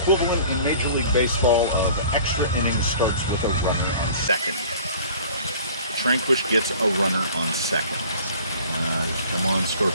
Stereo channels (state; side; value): inverted; both; correlation -0.47